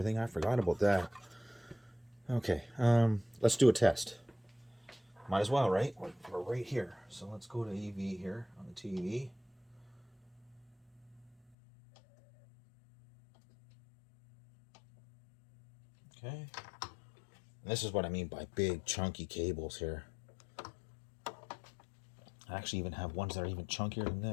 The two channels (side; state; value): right; drops out; at 11.4 s